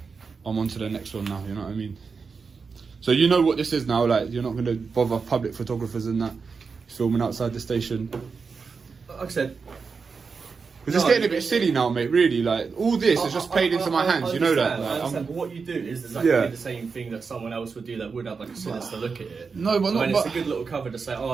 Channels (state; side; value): quieter; left; 5.1 dB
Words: I'm on to the next one now. You know what I mean? So you know what this is now. Like you're not going to bother public photographers and that filming outside the station. Like I said, it's just getting a bit silly now, mate. Really, like all this is just played into my hands. You know that. Like, I understand, but what you do is exactly the same thing that someone else would do that would have like a sinister look at it. No, but not. It's a good little cover to say, oh,